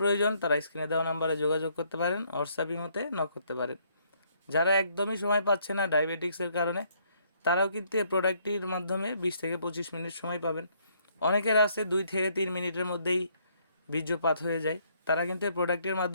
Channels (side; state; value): both; inverted; correlation -0.68